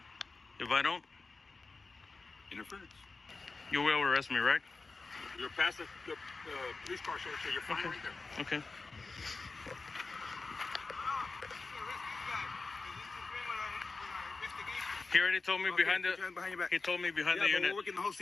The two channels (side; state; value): right; quieter; 3.9 dB